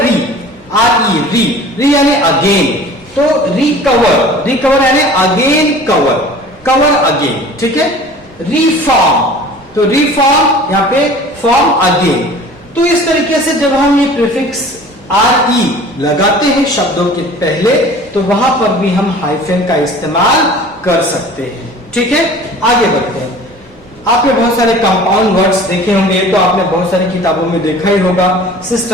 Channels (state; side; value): normal; both; correlation 0.44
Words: री, RE री यानी अगेन, तो रिकवर यानी अगेन कवर अगेन। ठीक है, रिफॉर्म, तो रिफॉर्म यहाँ पे फॉर्म अगेन। तो इस तरीके से जब हम ये प्रीफिक्स RE लगाते हैं शब्दों के पहले, तो वहां पर भी हम हाइफन का इस्तेमाल कर सकते हैं। ठीक है, आगे बढ़ते हैं। आपने बहुत सारे कंपाउंड वर्ड्स देखे होंगे, तो आपने बहुत सारी किताबों में देखा ही होगा,